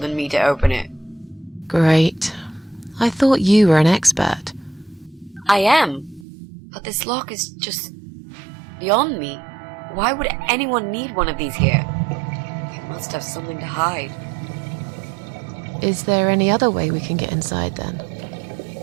me to open it. Great. I thought you were an expert. I am. But this lock is just beyond me. Why would anyone need one of these here? They must have something to hide. Is there any other way we can get inside then?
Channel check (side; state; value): left; drops out; at 6.2 s